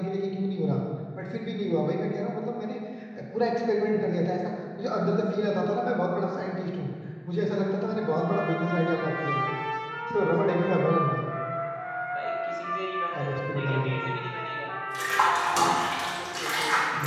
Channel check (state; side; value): identical; both; correlation 1.00